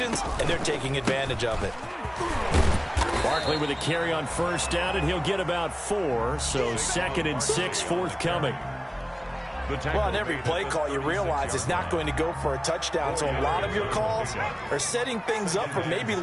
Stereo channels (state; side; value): identical; both; correlation 1.00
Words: and they're taking advantage of it. Barkley with a carry on first down, and he'll get about 4. So second and 6 forthcoming. Well, on every play call, you realize it's not going to go for a touchdown. So a lot of your calls are setting things up for maybe